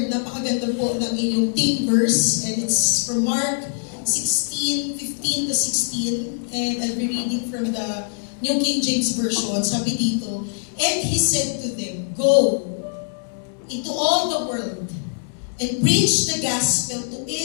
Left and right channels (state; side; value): silent; right; digital silence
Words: Napakaganda po ng inyong theme verse. And it's from Mark 16:15 to 16. And I'll be reading from the New King James Version. Sabi dito, and he said to them, go into all the world and preach the gospel to